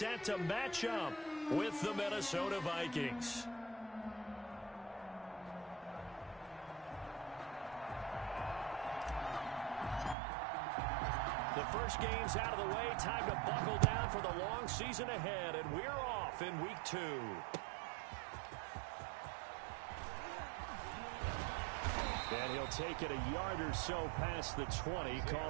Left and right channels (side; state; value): left; drops out; at 10.2 s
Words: to match up with the Minnesota Vikings. The first game's out of the way. Time to buckle down for the long season ahead, and we're off in week 2. And he'll take it a yard or so past the 20,